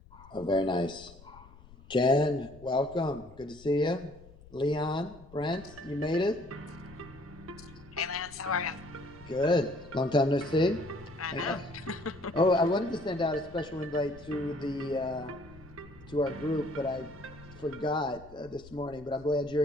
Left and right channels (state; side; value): noise; left; rumble, 21 dB below the sound